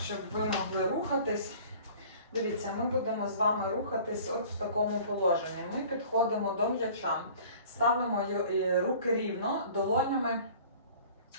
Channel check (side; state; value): both; inverted; correlation -0.47